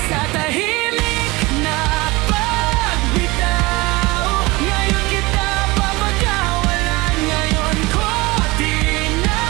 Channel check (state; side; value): quieter; left; 22.8 dB